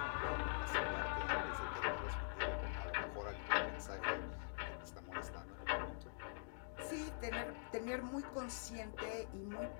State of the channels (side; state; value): right; silent; digital silence